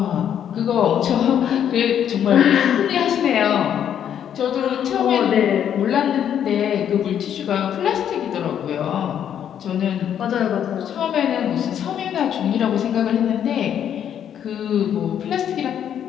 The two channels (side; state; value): right; quieter; 9.4 dB